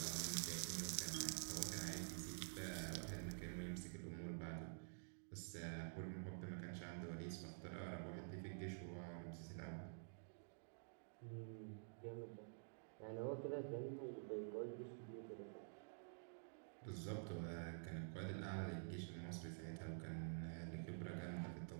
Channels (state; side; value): silent; left; digital silence